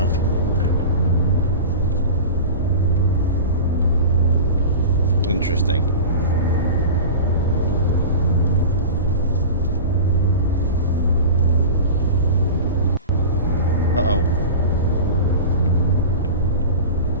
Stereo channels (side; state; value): both; inverted; correlation -0.32